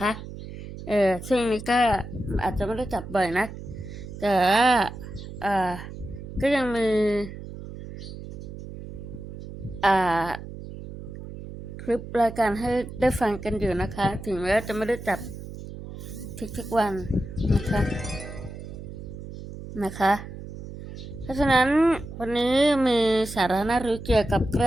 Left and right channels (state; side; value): noise; right; hum, 11 dB below the sound